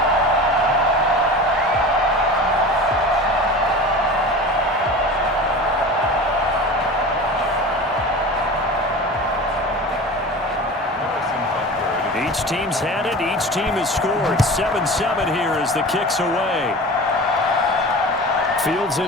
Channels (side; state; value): both; normal; correlation 0.34